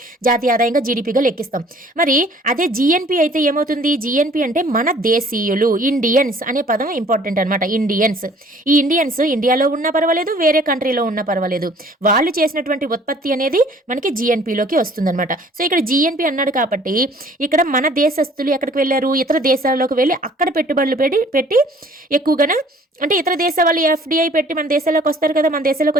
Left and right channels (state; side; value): normal; both; correlation 0.55